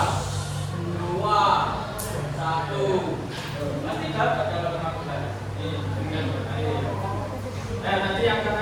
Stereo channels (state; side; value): identical; both; correlation 1.00